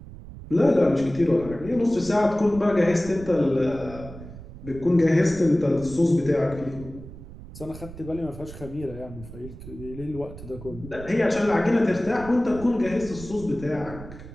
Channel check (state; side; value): noise; right; rumble, 14 dB below the sound